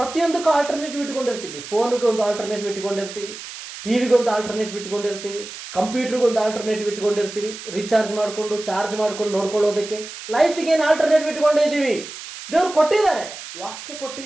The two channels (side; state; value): right; noise; hiss, 12 dB below the sound